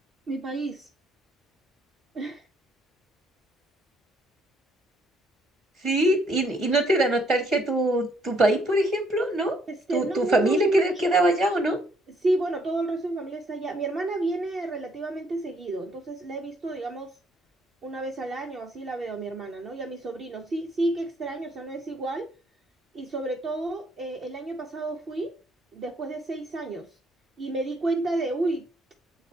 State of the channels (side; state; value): both; normal; correlation 0.68